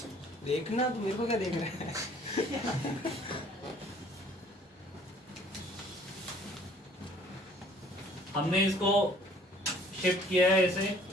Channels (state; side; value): normal; both; correlation 0.56